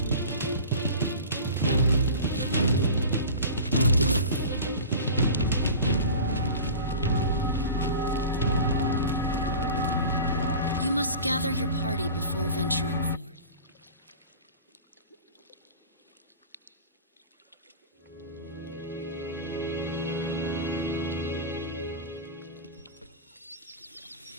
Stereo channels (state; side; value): inverted; both; correlation -0.36